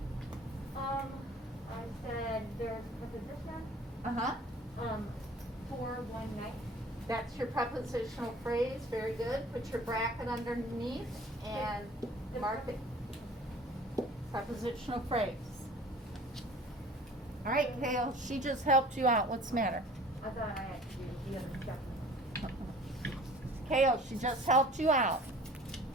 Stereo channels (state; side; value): normal; both; correlation 0.47